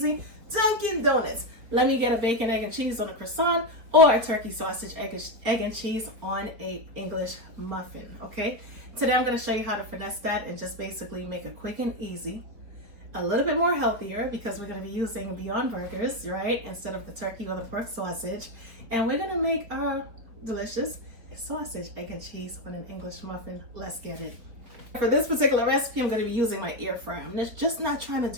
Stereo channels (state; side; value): late; left; 4.6 ms